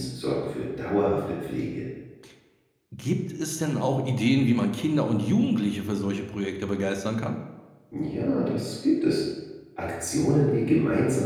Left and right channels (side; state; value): both; identical; correlation 1.00